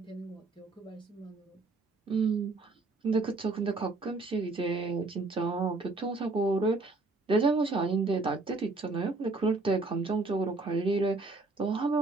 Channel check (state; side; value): quieter; left; 3.4 dB